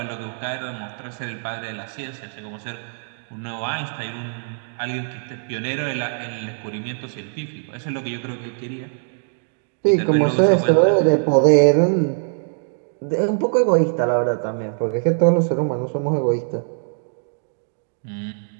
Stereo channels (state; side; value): silent; left; digital silence